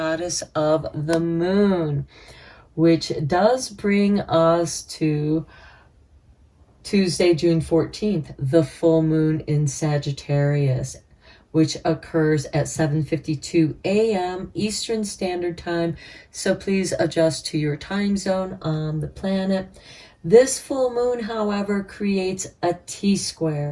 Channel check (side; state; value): both; identical; correlation 1.00